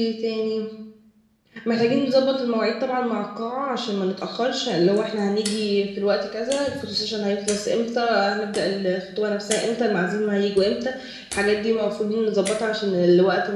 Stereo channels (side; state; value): both; identical; correlation 1.00